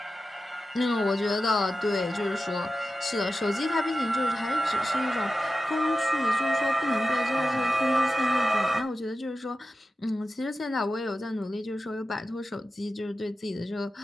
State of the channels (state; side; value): normal; both; correlation 0.93